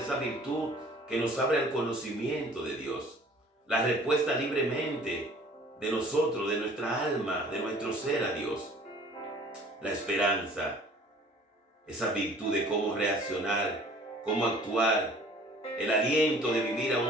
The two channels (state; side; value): normal; both; correlation 0.51